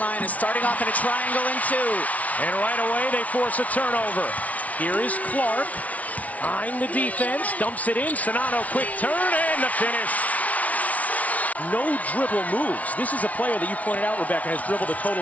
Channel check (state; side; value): late; right; 0.069 ms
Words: starting off in a triangle in two. And right away, they force a turnover. Here is Clark, eyeing the defense, dumps it in. Sonano, quick turn, and the finish. No dribble moves. This is a player that you pointed out, Rebecca, has dribbled a